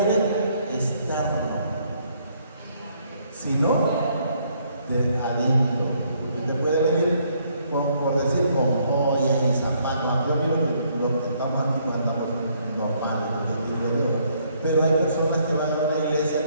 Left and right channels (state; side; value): inverted; both; correlation -0.68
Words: externo, sino de adentro. Usted puede venir por decir con joyas y zapatos. Yo miro que los que estamos aquí andamos normales, diría yo. Pero hay personas que van a la